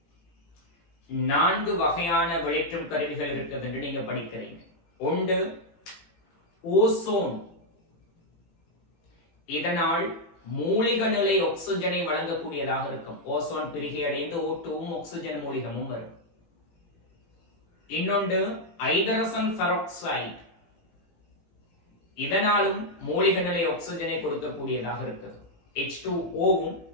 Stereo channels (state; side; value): late; right; 18 ms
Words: 4 வகையான வெளியேற்றும் கருவிகள் இருக்குது என்று நீங்க படிக்கிறீங்க. ஒன்று ஓசோன். இதனால் மூலிக நிலை ஆக்சிஜனை வழங்கக்கூடியதாக இருக்கும். ஓசோன் பிரிகை அடைந்து O2வும் ஆக்சிஜன் மூலிகமும் வரும். இன்னொன்று ஹைட்ரஜன் பெராக்சைடு. இதனாலும் மூலிக நிலை ஆக்சிஜனை கொடுக்கக்கூடியதாக இருக்குது. H2O-வும்